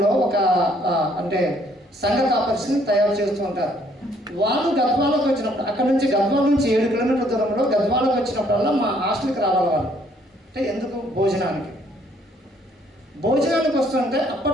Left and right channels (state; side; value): normal; both; correlation 0.65